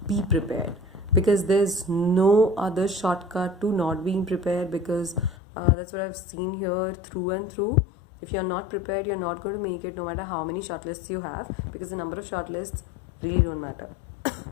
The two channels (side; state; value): right; drops out; at 5.4 s